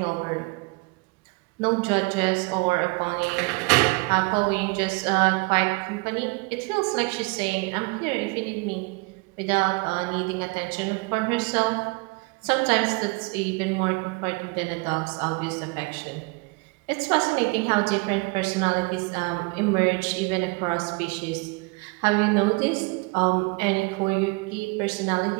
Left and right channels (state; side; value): quieter; left; 28.7 dB